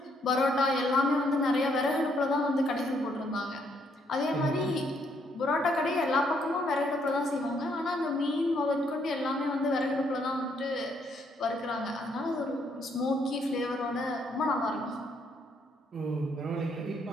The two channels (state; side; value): normal; both; correlation 0.71